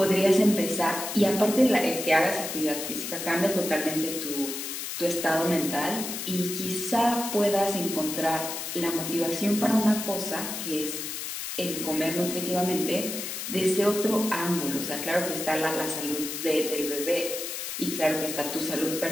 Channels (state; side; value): noise; left; hiss, 5 dB below the sound